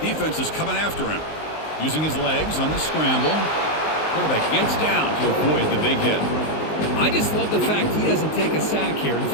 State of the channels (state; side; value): late; right; 19 ms